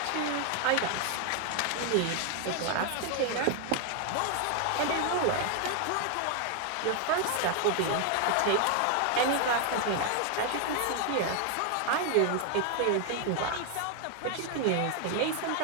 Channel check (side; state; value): both; different; correlation 0.00